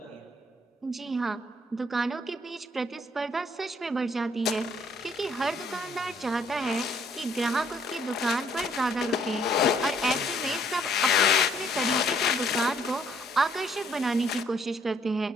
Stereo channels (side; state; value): both; normal; correlation 0.65